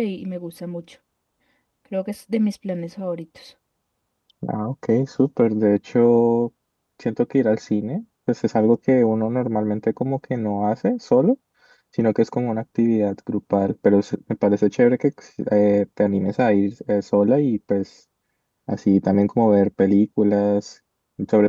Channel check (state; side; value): identical; both; correlation 1.00